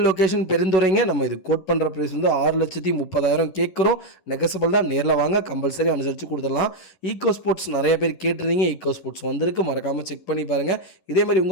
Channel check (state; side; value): late; right; 11 ms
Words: லொக்கேஷன் பெருந்துறைங்க. நம்ம இது கோட் பண்ணுற ப்ரைஸ் வந்து 6,30,000 கேட்குறோம். நெகசபிள் தான். நேரில் வாங்க, கம்பல்சரி அனுசரித்து கொடுத்துடலாம். ஈகோ ஸ்போர்ட்ஸ் நிறைய பேர் கேட்டிருந்தீங்க. ஈகோ ஸ்போர்ட்ஸ் வந்திருக்கு. மறக்காமல் செக் பண்ணி பாருங்கள். இதேமாதிரி